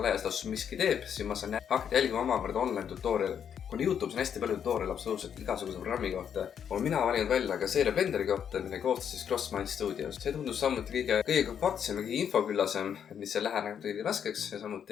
laastus miski teeb, siis ma saan hakata jälgima omakorda online tutorial. Kuna YouTube's on hästi palju tutorial absoluutselt igasuguse programmi kohta, olen mina valinud välja ka seeria Blenderi kohta, mille koostas siis CrossMind Studios. See tundus samuti kõige kompaktsem ja kõige infoküllasem, et mis see läheneb kõige raskeks ja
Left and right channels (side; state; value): right; quieter; 8.3 dB